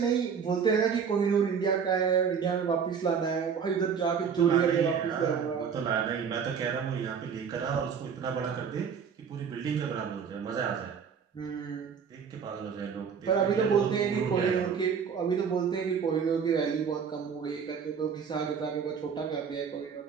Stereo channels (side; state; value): left; quieter; 6.7 dB